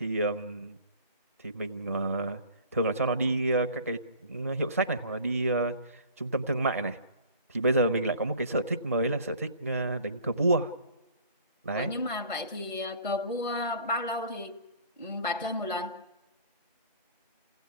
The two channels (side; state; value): both; inverted; correlation -0.48